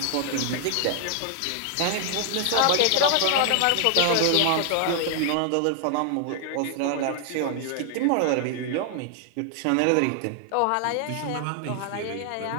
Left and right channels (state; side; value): different; both; correlation 0.00